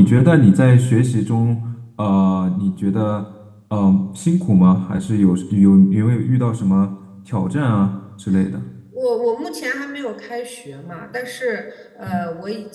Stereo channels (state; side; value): identical; both; correlation 1.00